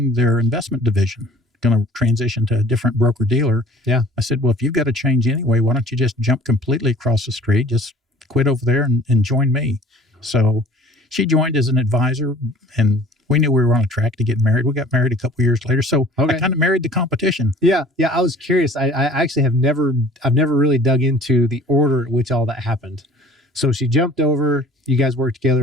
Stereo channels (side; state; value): both; normal; correlation 0.50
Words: their investment division, going to transition to a different broker dealer. Yeah. I said, well, if you've got to change anyway, why don't you just jump completely across the street, just quit over there and join me. So she joined as an advisor, and we knew we were on a track to get married. We got married a couple years later. So I kind of married the competition. Yeah. I was curious. I actually I've never really dug into the order at which all that happened. So she jumped over, you guys worked